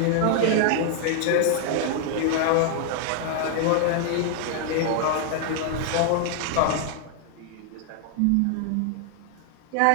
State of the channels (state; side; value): different; both; correlation 0.00